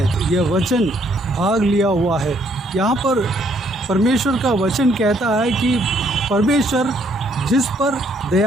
यह वचन भाग लिया हुआ है। यहाँ पर परमेश्वर का वचन कहता है कि परमेश्वर जिस पर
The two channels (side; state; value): both; normal; correlation 0.68